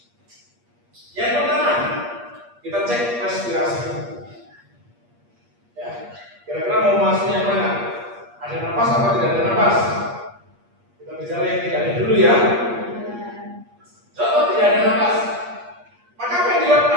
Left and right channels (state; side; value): late; left; 8.5 ms